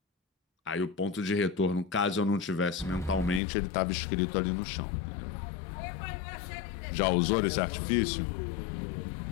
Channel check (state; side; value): drops out; right; at 3.4 s